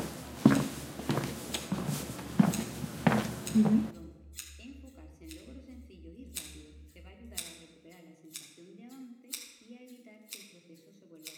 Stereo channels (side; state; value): both; identical; correlation 1.00